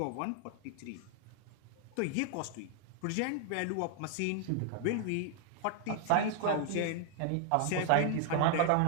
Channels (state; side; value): different; both; correlation 0.00